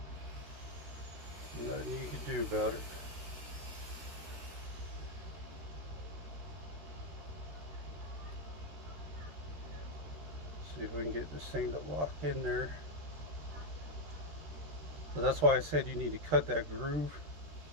Nothing you can do about it. See if we can get this thing to lock in there. So that's why I said you need to cut that groove.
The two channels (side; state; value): left; late; 13 ms